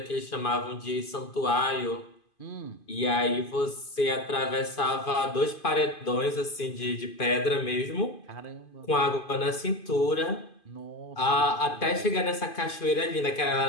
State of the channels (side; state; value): right; late; 2.5 ms